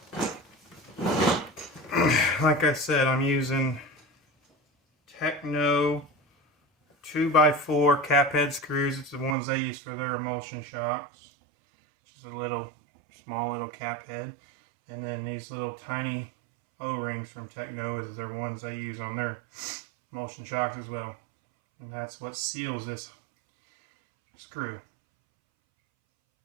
Like I said, I'm using Techno 2x4 cap head screws. It's the ones they use for their emulsion shocks. Just a little, small little cap head. And then these little tiny O-rings from Techno is their ones they use on their emulsion shocks as well. And that's what seals this screw.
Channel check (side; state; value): left; drops out; at 9.3 s